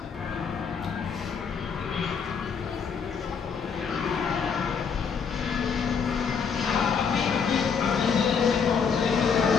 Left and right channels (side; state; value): right; quieter; 6.3 dB